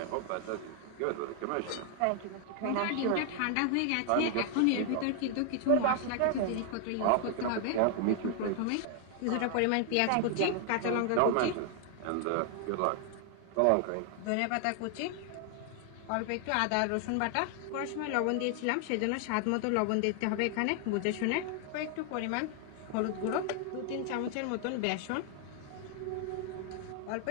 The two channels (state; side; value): different; both; correlation 0.00